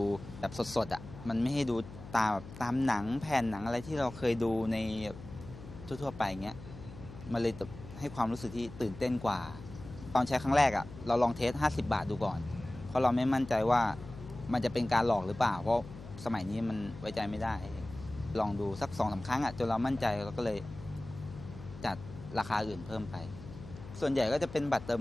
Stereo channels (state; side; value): noise; left; hum, 14 dB below the sound